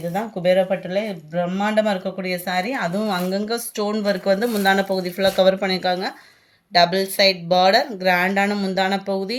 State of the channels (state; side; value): identical; both; correlation 1.00